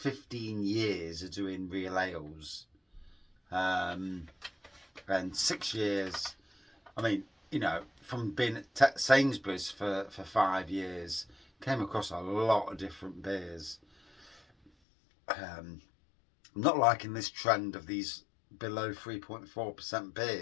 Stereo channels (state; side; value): drops out; right; at 14.7 s